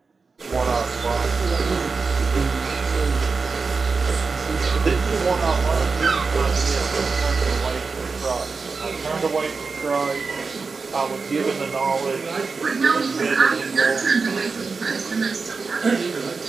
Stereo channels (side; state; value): left; quieter; 4.6 dB